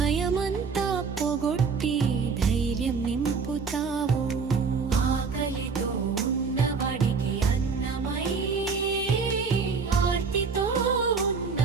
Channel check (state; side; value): quieter; left; 5.2 dB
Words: పొగొట్టి ధైర్యం నింపుతావు ఆకలితో ఉన్నవాడికి అన్నమై ఆర్తితో